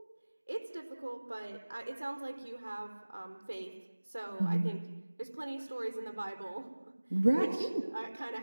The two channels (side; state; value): both; inverted; correlation -1.00